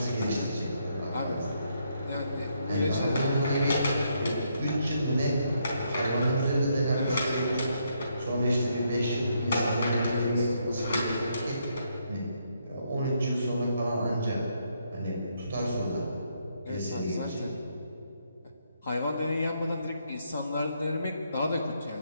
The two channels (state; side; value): inverted; both; correlation -0.75